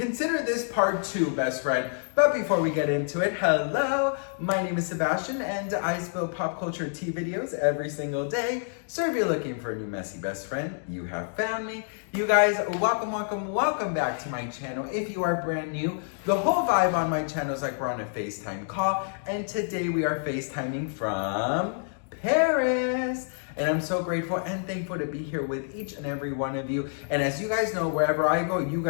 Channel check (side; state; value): right; silent; digital silence